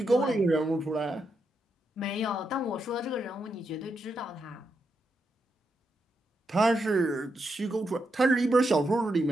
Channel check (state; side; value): normal; both; correlation 0.83